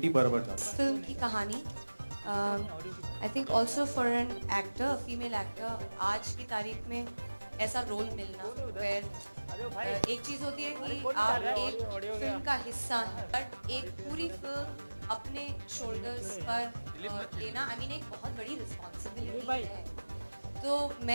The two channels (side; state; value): both; inverted; correlation -1.00